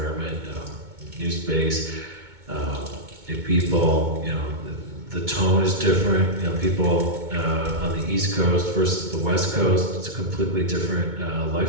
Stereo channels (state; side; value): late; left; 2.2 ms